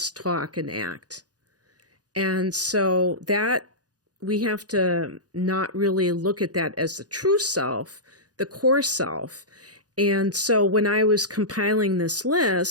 talk, and act. And so that we have to not really look at that as the true self, the core self. And so when I was compiling this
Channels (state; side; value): late; left; 0.68 ms